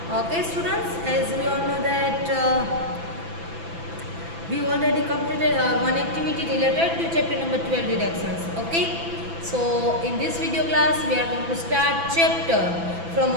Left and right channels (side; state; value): left; late; 6.0 ms